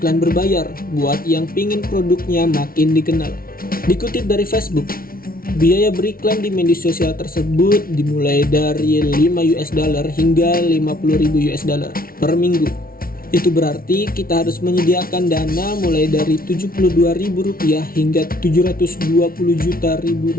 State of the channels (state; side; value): late; right; 0.43 ms